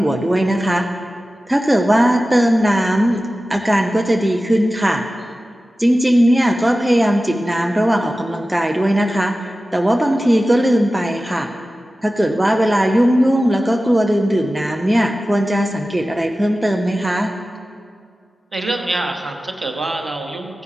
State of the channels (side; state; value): both; normal; correlation 0.95